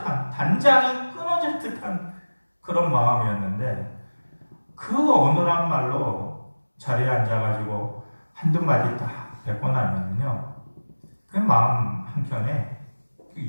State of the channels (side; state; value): both; inverted; correlation -1.00